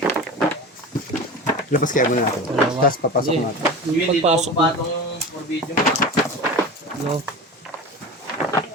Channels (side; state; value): both; normal; correlation 0.31